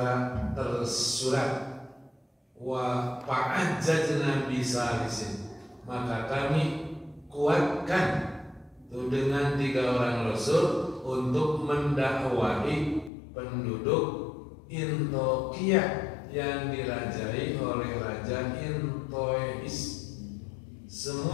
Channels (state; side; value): drops out; right; at 13.1 s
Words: tersurat. Wa fa'ajjajna bisalisin, maka kami kuatkan itu dengan 3 orang rasul untuk mendakwahi penduduk Intokiyah yang dirajai oleh Raja Intois.